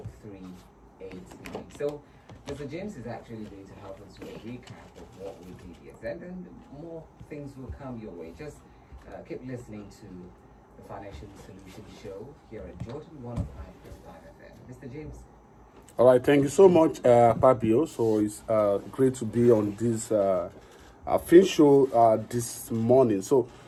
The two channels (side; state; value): both; identical; correlation 1.00